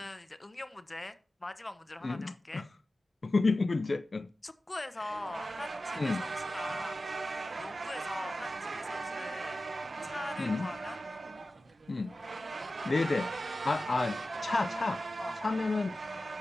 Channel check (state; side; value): normal; both; correlation 0.94